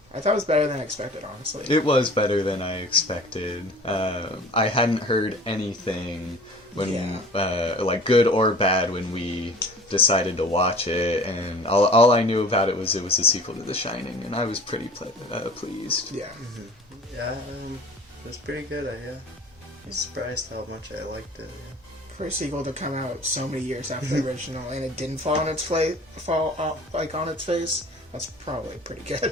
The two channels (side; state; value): both; normal; correlation 0.44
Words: I thought it was better than I expected, honestly. It was better than I expected. I hadn't heard anything when, like good or bad, when we decided to watch it, and all I knew about it was a sequel to The Shining, and I was pretty pleased. Yeah. Yeah, it was pretty good. I was surprised how much I liked it. Yeah. For a sequel to come out so many years after the original, and it didn't fall on its face, that's probably pretty